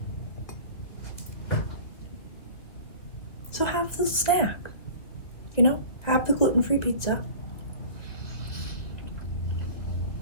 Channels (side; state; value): right; late; 2.3 ms